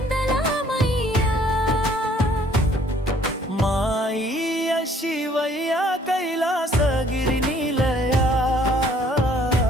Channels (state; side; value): normal; both; correlation 0.60